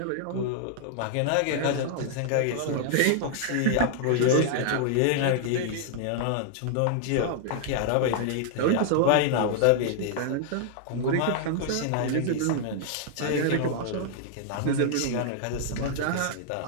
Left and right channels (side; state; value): both; different; correlation -0.01